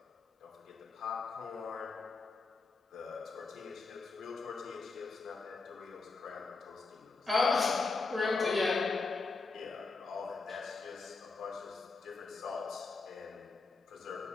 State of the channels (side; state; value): right; quieter; 4.1 dB